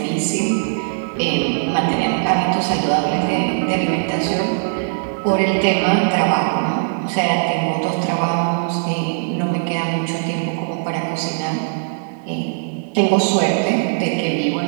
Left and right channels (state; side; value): silent; left; digital silence